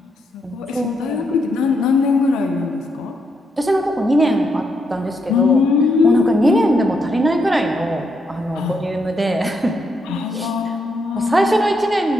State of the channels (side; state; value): both; normal; correlation 0.79